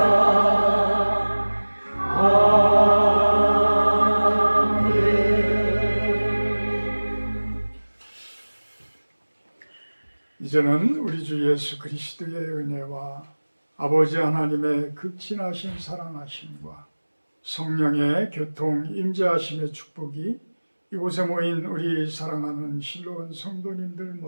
이제는 우리 주 예수 그리스도의 은혜와 아버지 하나님의 극진하신 사랑하심과 성령의 교통 임재하심의 축복이 이곳에 모인 우리 사랑하는 실로원 성도님들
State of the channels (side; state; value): both; inverted; correlation -1.00